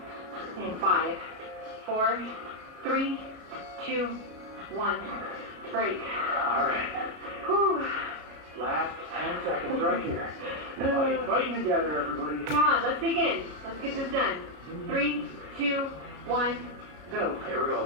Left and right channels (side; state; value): left; late; 33 ms